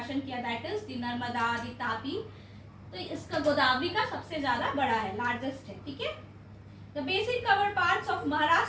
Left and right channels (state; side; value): identical; both; correlation 1.00